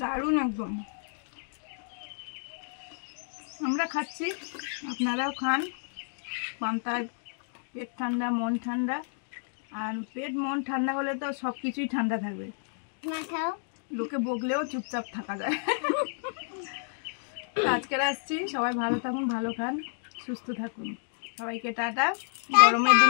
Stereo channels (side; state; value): right; silent; digital silence